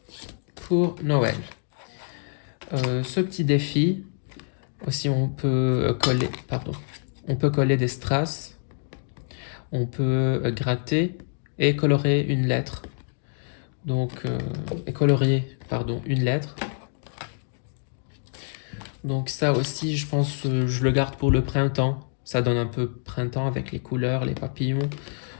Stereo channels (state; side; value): silent; right; digital silence